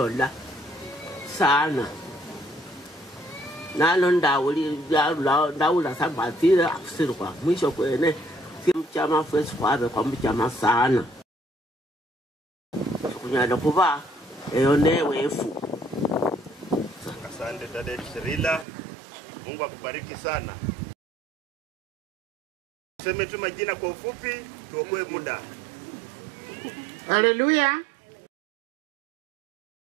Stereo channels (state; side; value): drops out; left; at 18.7 s